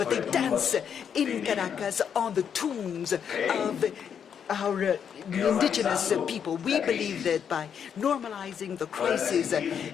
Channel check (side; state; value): right; quieter; 7.8 dB